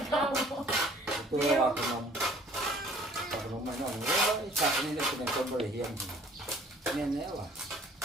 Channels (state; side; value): normal; both; correlation 0.55